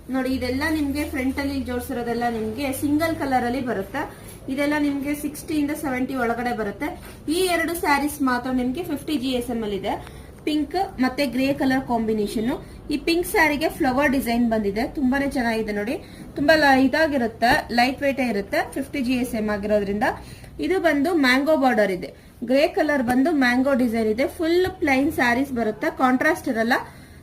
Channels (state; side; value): identical; both; correlation 1.00